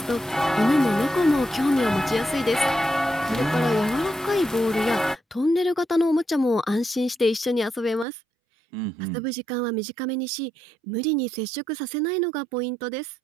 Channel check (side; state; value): left; drops out; at 8.1 s